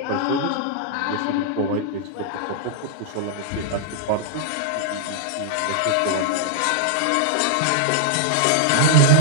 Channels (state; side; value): different; both; correlation -0.01